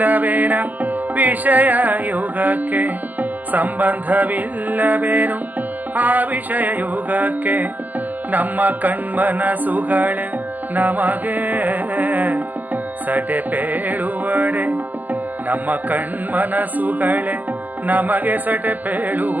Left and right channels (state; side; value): late; left; 0.083 ms